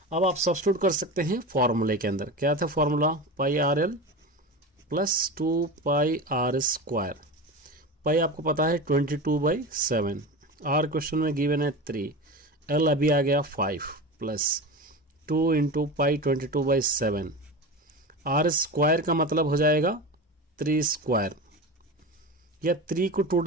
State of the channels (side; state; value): both; normal; correlation 0.27